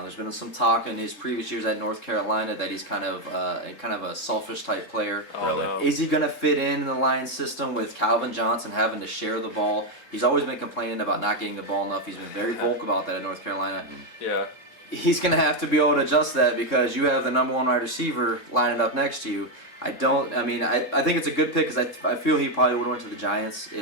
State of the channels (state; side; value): late; right; 3.8 ms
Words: been some talk in his previous years at North Carolina that he's kind of a selfish type player. Really? Is he going to fit in the Lions system with Calvin Johnson having to share the ball? He's always been complaining about not getting the ball enough. He's been very vocal about that at North Carolina. Yeah. He's going to have to be able to adjust that because you have the number one wide receiver lining up next to you. I think it's a good pick because I feel he probably would have went to the Giants